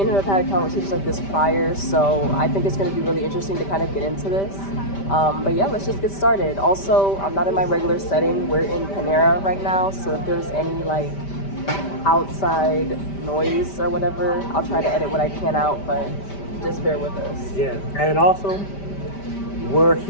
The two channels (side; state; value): right; late; 5.1 ms